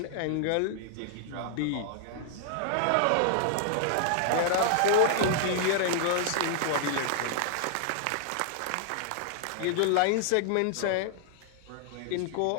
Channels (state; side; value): different; both; correlation -0.01